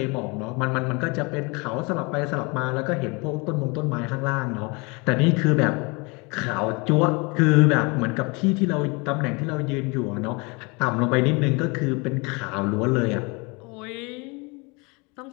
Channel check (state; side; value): quieter; right; 28.7 dB